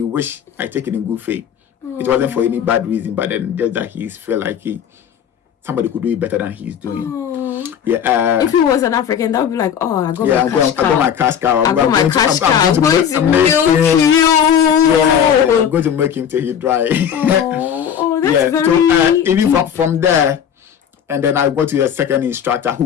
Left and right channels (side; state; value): right; quieter; 8.6 dB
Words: wished I take it in good faith. It wasn't for any bad reason, but then just that he felt like somebody could do it better than he's doing. Yeah. If he was an African, that would be like, I got my cash cow. I'm going to milk you. Yeah, I'm going to make him till he dry. That's very. So even from there. And then I got to a second instructor